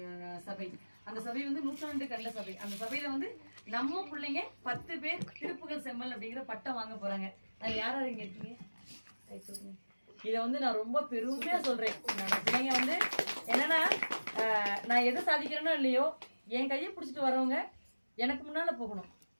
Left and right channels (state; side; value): inverted; both; correlation -1.00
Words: சபை. அந்த சபை வந்து 100 கண்ட சபை. அந்த சபையில வந்து நம்ம பிள்ளைங்க 10 பேர் திருப்புகழ் செம்மல் அப்படிங்கிற பட்டம் வாங்க போறாங்க. அது யாராவது இங்க இருக்கீங்க? இதை வந்து நான் ரொம்ப பெருமையா சொல்றேன். என்னோட பிள்ளைங்க வந்து என்னன்னா, நான் எதை சாதிக்கிறேனோ இல்லையோ, என் கையை பிடிச்சிட்டு வரவங்க எனக்கு முன்னால போகணும்,